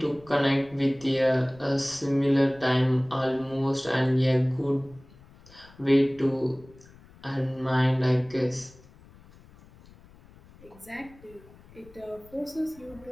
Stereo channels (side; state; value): left; noise; rumble, 24 dB below the sound